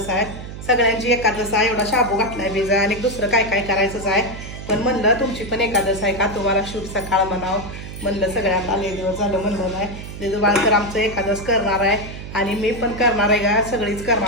आहे, सगळ्यांची एकादश आहे. एवढा शाबू घातलाय बिजा आणि दुसरं काय काय करायचंच आहे. पण म्हणलं तुमची पण एकादश आहे का, तुम्हाला शुभ सकाळ म्हणावं म्हणलं. सगळ्यांना लय दिवस झालं म्हणलं नाही. दिदू बाळ तर आमचं एकादश करणार आहे आणि मी पण करणार आहे का, सगळीच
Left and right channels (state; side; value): noise; right; hum, 11 dB below the sound